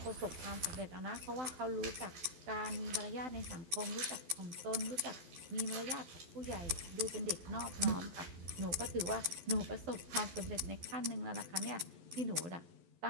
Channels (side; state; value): left; late; 11 ms